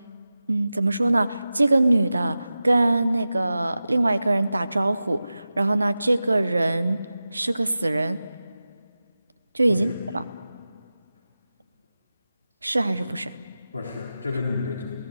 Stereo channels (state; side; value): inverted; both; correlation -0.94